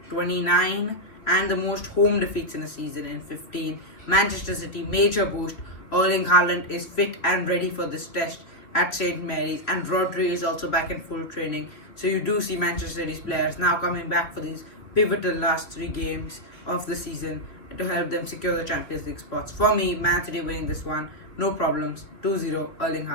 29, and the most home defeats in a season in 15. Manchester City, major boost. Erling Haaland is fit and ready for this test at St. Mary's, and Rodri is also back in full training. So you do see Manchester City's players now coming back for these pivotal last 3 games of the season to help them secure the Champions League spots. For me, Man City winning this one, no problems. 2-0, Erling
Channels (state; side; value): late; right; 3.1 ms